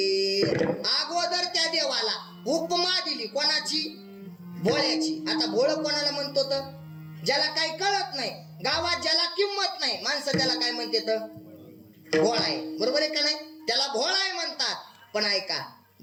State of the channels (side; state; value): both; identical; correlation 1.00